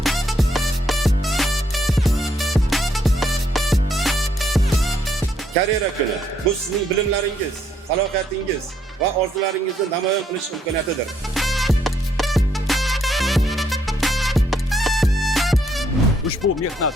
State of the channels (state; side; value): normal; both; correlation 0.72